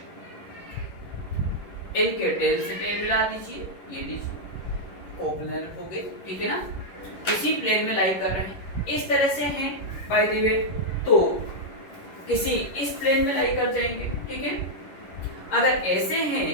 इनके टेल से टेल मिला दीजिए, ये लीजिए कोप्लेनर हो गए, ठीक है ना। किसी प्लेन में लाई कर रहे हैं, इस तरह से हैं बाय द वे, तो किसी इस प्लेन में लाई कर जाएंगे, ठीक है। अगर ऐसे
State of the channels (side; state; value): right; late; 11 ms